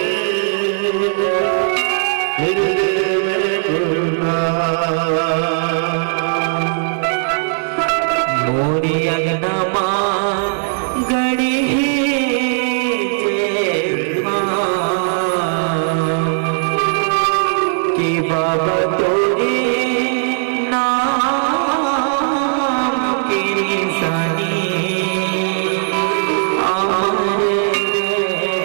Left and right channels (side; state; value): left; silent; digital silence